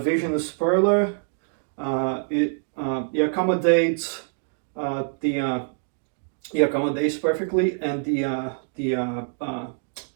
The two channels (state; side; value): silent; left; digital silence